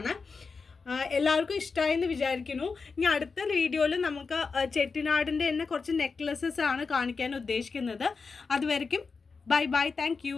എല്ലാവർക്കും ഇഷ്ടമായെന്ന് വിചാരിക്കുന്നു. ഇനി അടുത്ത വീഡിയോയിൽ നമുക്ക് ചെട്ടിനാടിൻ്റെ തന്നെ കുറച്ച് നെക്ലസസ് ആണ് കാണിക്കാൻ ഉദ്ദേശിക്കുന്നത്. അതുവരെയ്ക്കും ബൈ ബൈ, താങ്ക്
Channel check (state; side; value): quieter; right; 4.8 dB